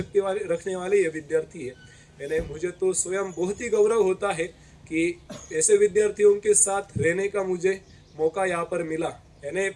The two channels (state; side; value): identical; both; correlation 1.00